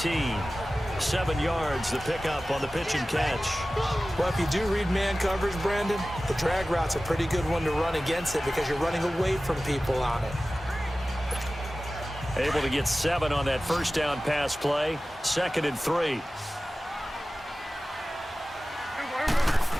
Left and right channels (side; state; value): both; normal; correlation 0.96